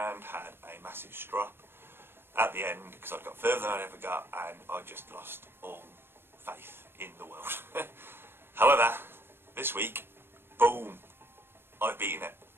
had a massive strop at the end because I got further than I ever got, and I just lost all faith in the world. However, this week, boom, I've beaten it.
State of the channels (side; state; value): left; late; 0.11 ms